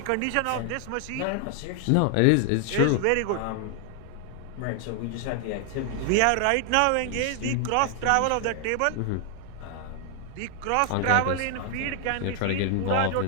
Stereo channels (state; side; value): different; both; correlation 0.00